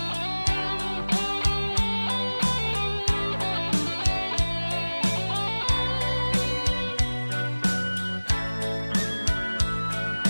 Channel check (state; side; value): inverted; both; correlation -1.00